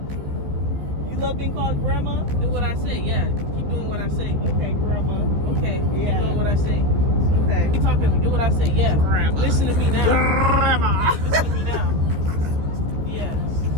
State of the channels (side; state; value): left; late; 14 ms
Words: You love being called Grandma? Do what I say. Yeah, keep doing what I say. Okay, Grandma. Okay. Yeah. Keep doing what I say. Okay. Keep talking to me. Do what I say. Yeah. Grandma. Listen to me now. Grandma. Listen to me now. Yeah.